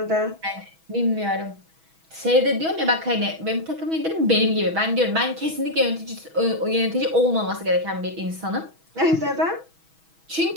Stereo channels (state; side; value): late; left; 6.2 ms